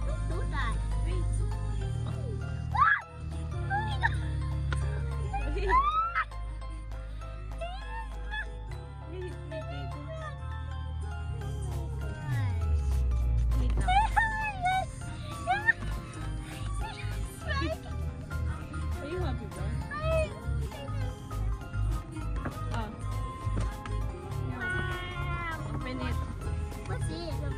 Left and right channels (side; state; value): both; identical; correlation 1.00